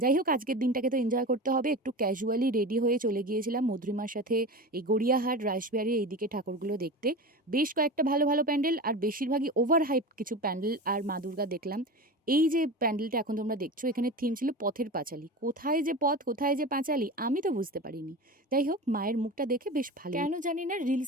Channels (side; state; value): both; normal; correlation 0.28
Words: হোক আজকের দিনটাকে তো এনজয় করতে হবে। একটু ক্যাজুয়ালি রেডি হয়ে চলে গিয়েছিলাম মধুরিমার সাথে এই গড়িয়াহাট, রাসবিহারী এইদিকে ঠাকুরগুলো দেখতে। বেশ কয়েকটা ভালো, ভালো প্যান্ডেল আর বেশিরভাগই ওভার হাইপড কিছু প্যান্ডেল আর মা দুর্গা দেখলাম। এই যে প্যান্ডেলটা এখন তোমরা দেখছো এখানে থিম ছিল পথের পাঁচালী। কোথায় যে পথ, কোথায় যে পাঁচালী আমি তো বুঝতে পারিনি। যাই হোক মায়ের মুখটা দেখে বেশ ভালো কেন জানি না